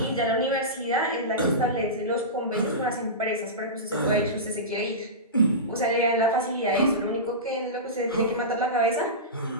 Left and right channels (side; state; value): both; normal; correlation -0.19